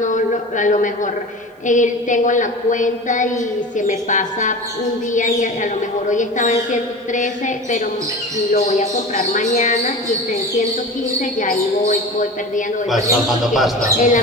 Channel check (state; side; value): normal; both; correlation 0.33